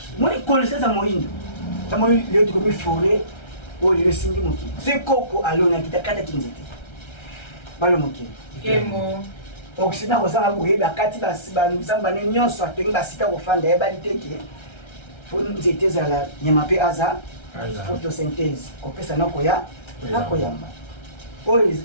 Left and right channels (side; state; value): right; late; 1.3 ms